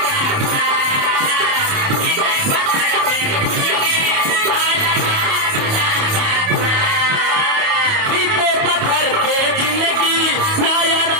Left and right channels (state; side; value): late; left; 28 ms